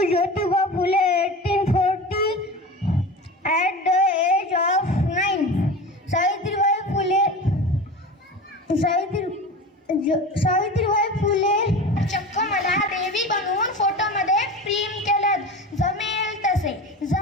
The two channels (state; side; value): normal; both; correlation 0.31